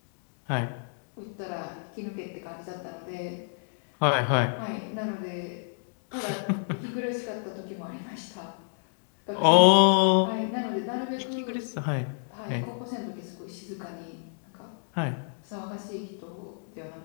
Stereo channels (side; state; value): right; silent; digital silence